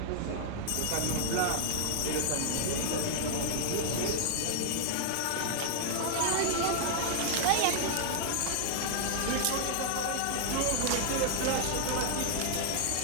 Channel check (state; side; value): different; both; correlation 0.00